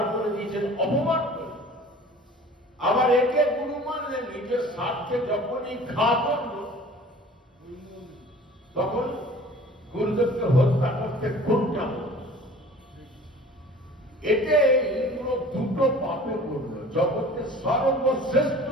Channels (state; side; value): normal; both; correlation 0.45